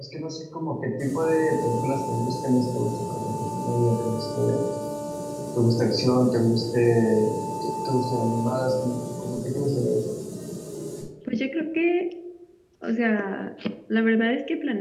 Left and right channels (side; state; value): both; identical; correlation 1.00